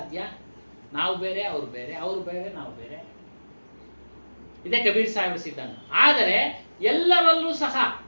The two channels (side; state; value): both; inverted; correlation -1.00